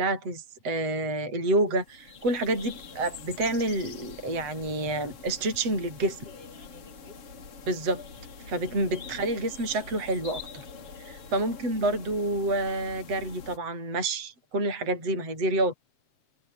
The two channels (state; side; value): late; left; 7.9 ms